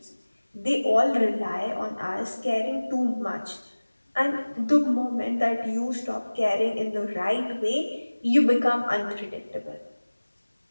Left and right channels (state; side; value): inverted; both; correlation -1.00